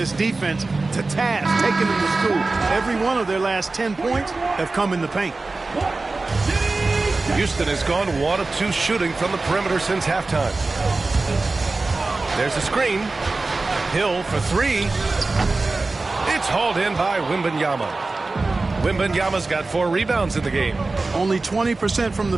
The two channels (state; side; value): quieter; left; 3.5 dB